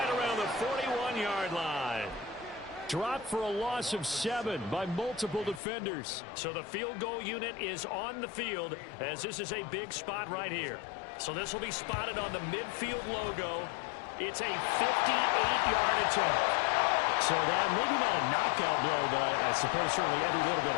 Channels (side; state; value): right; drops out; at 5.6 s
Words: around the 41-yard line. Dropped for a loss of 7 by multiple defenders. So the field goal unit is on the field as this is a big spot right here. So this will be spotted on the midfield logo. It's a 58-yard attempt. So that maybe not a knockout blow, but I suppose certainly every little bit